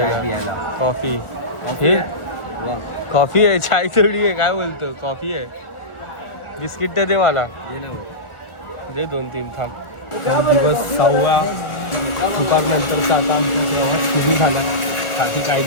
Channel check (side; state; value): right; late; 1.4 ms